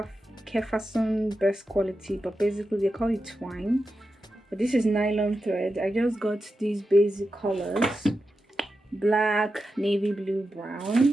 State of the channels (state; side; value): normal; both; correlation 0.90